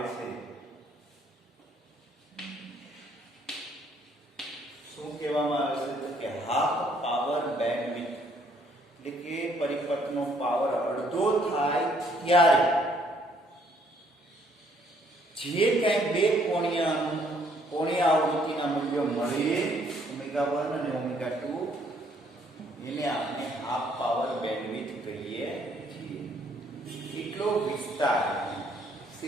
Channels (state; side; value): normal; both; correlation 0.66